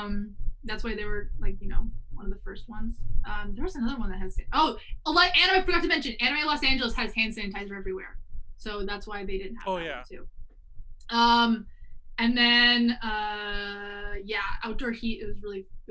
That's why they were like, one of the first ones. There was another one that has I forgot to mention, Anime Los Angeles has hand sanitizer everywhere. So that's why they didn't have that one too. And then outdoor heat, it was really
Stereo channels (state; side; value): identical; both; correlation 1.00